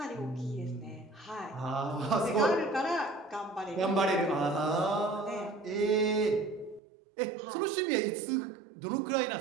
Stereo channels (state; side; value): drops out; left; at 6.8 s